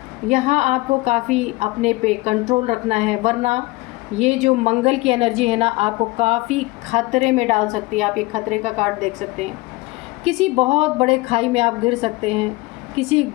यहाँ आपको काफ़ी अपने पे कंट्रोल रखना है, वरना ये जो मंगल की एनर्जी है ना आपको काफ़ी खतरे में डाल सकती है। आप ये खतरे का कार्ड देख सकते हैं, किसी बहुत बड़े खाई में आप गिर सकते हैं। किसी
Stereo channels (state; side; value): quieter; right; 21.6 dB